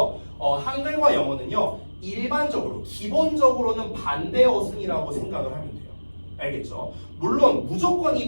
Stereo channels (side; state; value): both; inverted; correlation -1.00